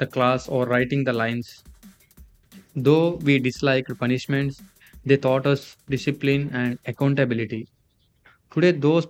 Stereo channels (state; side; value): identical; both; correlation 1.00